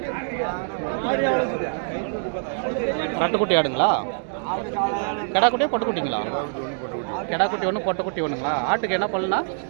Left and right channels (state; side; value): silent; left; digital silence